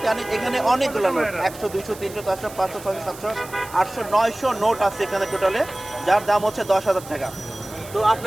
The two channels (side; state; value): right; noise; hiss, 17 dB below the sound